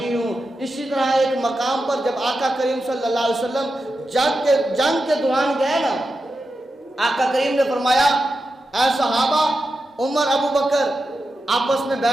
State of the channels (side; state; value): both; normal; correlation 0.90